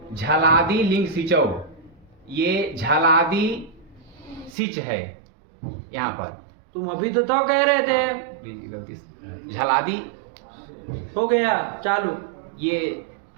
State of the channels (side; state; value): left; drops out; at 4.5 s